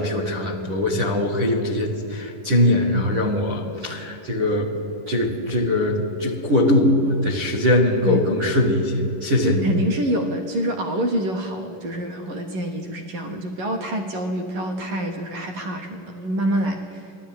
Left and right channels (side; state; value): left; late; 11 ms